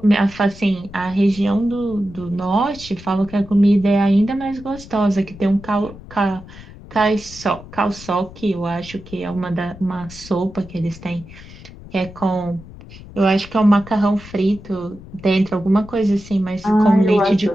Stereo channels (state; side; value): noise; left; rumble, 17 dB below the sound